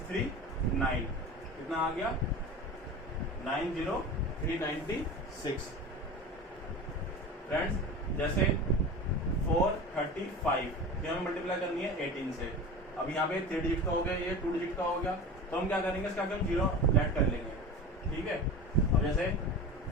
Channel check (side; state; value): both; normal; correlation 0.32